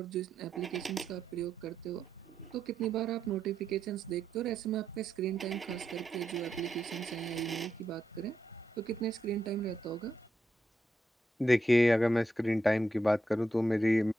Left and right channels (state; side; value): normal; both; correlation 0.84